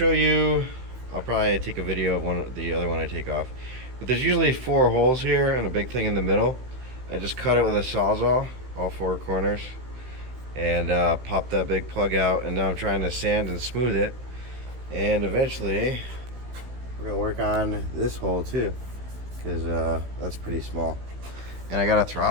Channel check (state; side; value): late; left; 16 ms